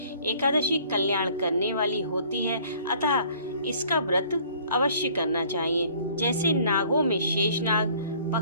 एकादशी कल्याण करने वाली होती है, अतः इसका व्रत अवश्य करना चाहिए। जैसे नागों में शेषनाग,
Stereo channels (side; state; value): both; inverted; correlation -0.55